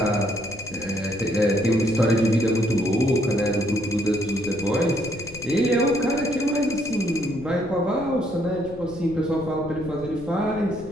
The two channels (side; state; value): left; noise; rumble, 18 dB below the sound